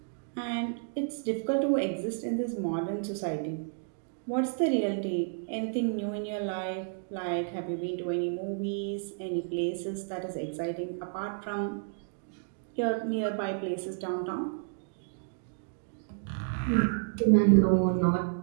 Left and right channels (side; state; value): left; silent; digital silence